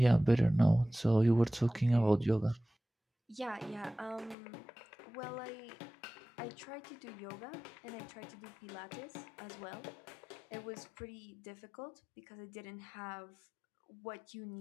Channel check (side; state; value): right; drops out; at 4.4 s